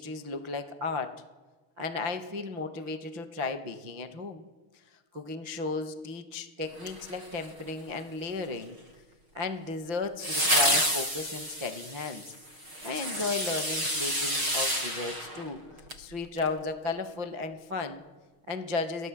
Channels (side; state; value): left; late; 6.4 ms